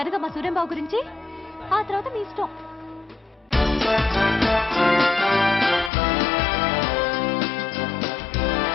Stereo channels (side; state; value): right; drops out; at 5.9 s